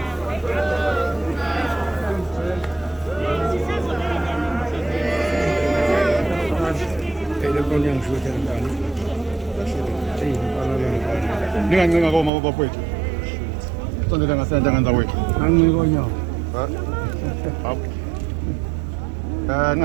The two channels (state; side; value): drops out; left; at 12.3 s